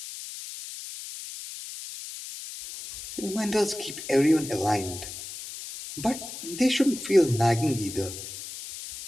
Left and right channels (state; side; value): noise; left; hiss, 11 dB below the sound